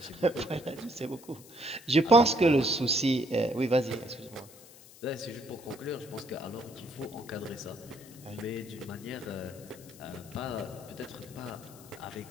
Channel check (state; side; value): noise; left; hiss, 21 dB below the sound